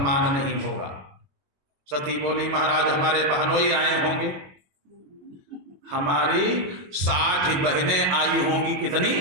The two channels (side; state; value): left; late; 21 ms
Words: नहीं होगा। सती बोली महाराज हमारे बहनोई आए होंगे, हमारी 60 बहनें आई होंगी। कितनी?